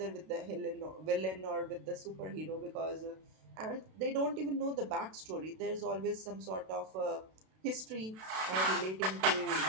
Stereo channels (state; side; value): late; left; 32 ms